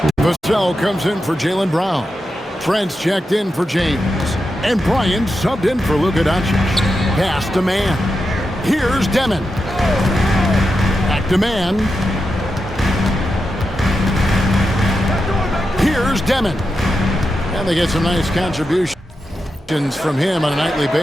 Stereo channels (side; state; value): both; normal; correlation 0.88